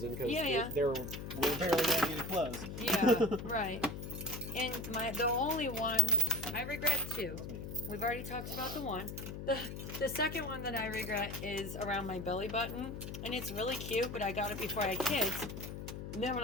because they were barely wearing any clothes. Yeah, right. And the only one I regret 2. We've already talked about the one. The second one that I regret is around my belly button, and it's really cute, but I got it before I had kids. And then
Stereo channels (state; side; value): noise; left; hum, 7 dB below the sound